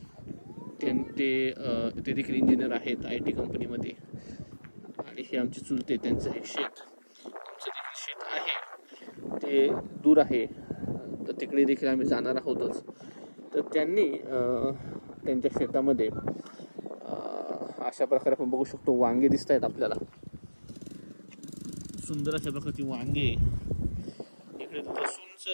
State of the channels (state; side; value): inverted; both; correlation -1.00